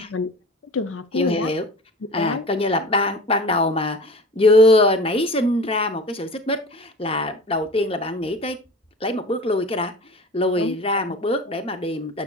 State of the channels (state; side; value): normal; both; correlation 0.36